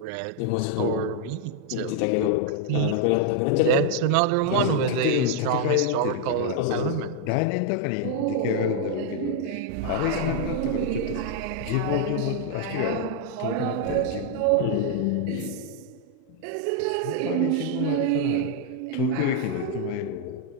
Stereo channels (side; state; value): both; different; correlation 0.00